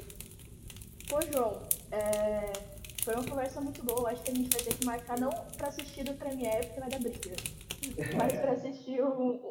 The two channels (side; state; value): both; identical; correlation 1.00